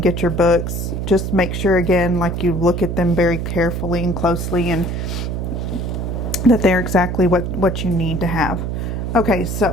get your books, just make sure, again, like you look at them very carefully and closely, and that they're exactly what you need to have. Okay,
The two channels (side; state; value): right; noise; hum, 3 dB below the sound